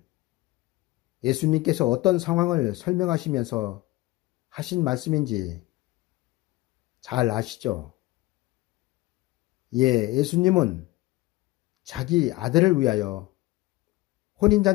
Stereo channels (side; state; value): right; quieter; 18.9 dB